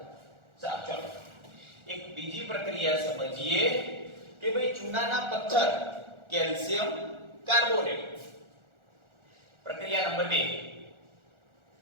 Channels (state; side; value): late; left; 1.4 ms